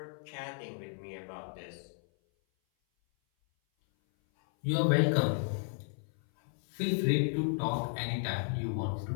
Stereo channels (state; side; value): silent; right; 55 dB below the other